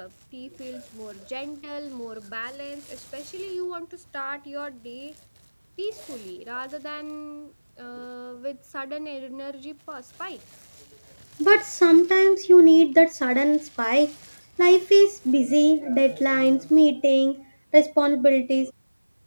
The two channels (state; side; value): inverted; both; correlation -1.00